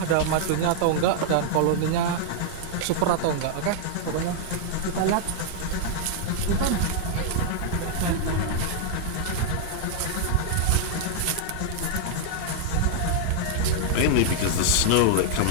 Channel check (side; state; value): both; different; correlation 0.00